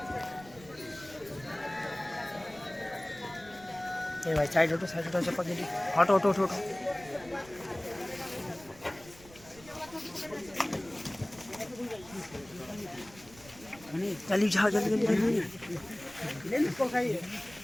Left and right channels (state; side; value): noise; right; rumble, 21 dB below the sound